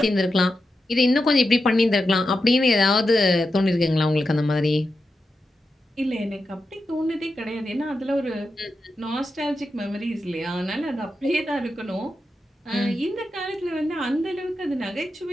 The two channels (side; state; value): both; normal; correlation 0.89